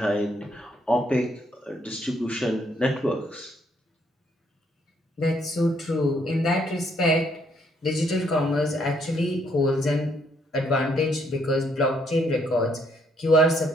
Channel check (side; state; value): both; normal; correlation 0.70